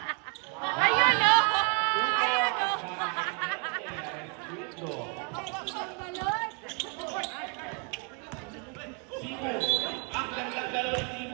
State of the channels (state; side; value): quieter; left; 36.3 dB